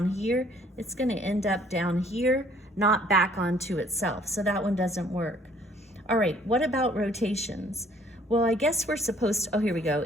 here. It's gonna end up down here, not back onto itself, so that one doesn't work. All right, what about rotations? Well, I guess we're supposed to, oh, here we go.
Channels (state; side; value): normal; both; correlation 0.60